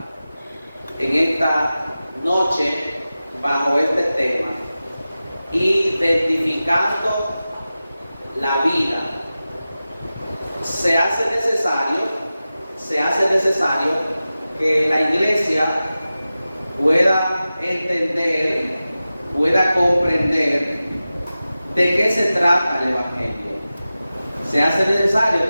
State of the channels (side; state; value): both; inverted; correlation -0.95